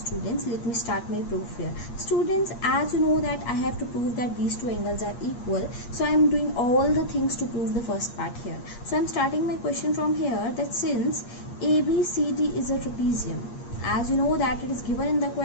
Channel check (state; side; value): late; right; 8.5 ms